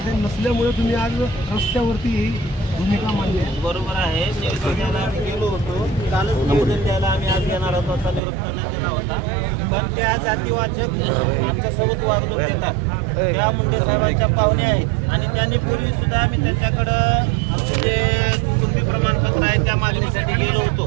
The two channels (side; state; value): left; drops out; at 8.2 s